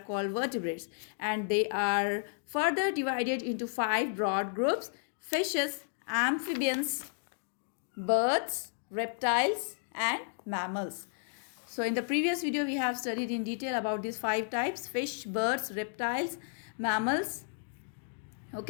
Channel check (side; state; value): right; silent; digital silence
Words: vertebrates, and they are further divided into 5 broad groups: fishes, amphibians, birds, reptiles, and mammals. So in the previous video, we have studied in detail about these 5 types: fish, birds, reptiles, mammals,